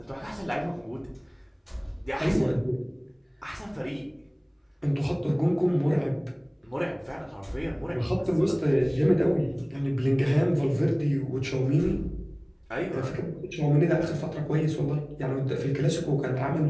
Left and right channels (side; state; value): both; identical; correlation 1.00